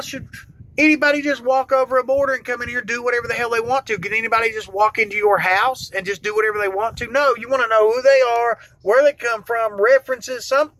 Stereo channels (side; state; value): both; identical; correlation 1.00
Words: should anybody just walk over a border and come in here and do whatever the hell they want to? Can anybody just walk into your house and just do whatever they want to? No, you want to know who they are, where they come from, references,